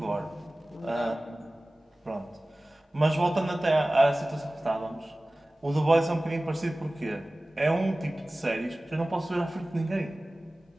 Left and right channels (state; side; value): normal; both; correlation 0.98